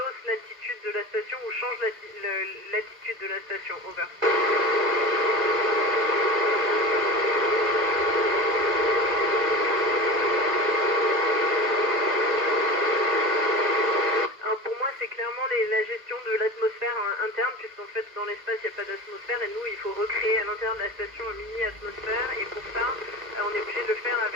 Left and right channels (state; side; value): late; left; 2.0 ms